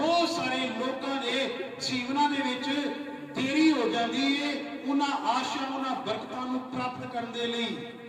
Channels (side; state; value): both; identical; correlation 1.00